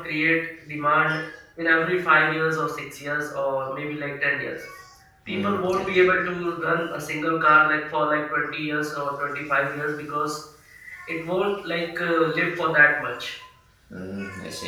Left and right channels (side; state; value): both; identical; correlation 1.00